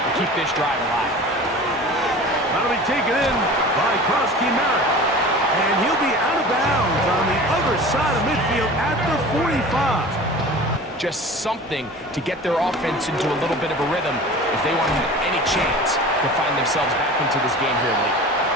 keep this drive alive. That'll be taken in by Krosky Merritt. And he'll be out of bounds on the other side of midfield at the 45. Just something to get their offense into a little bit of a rhythm if they want to have any chance to find themselves back into this game here late.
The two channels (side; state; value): both; normal; correlation 0.38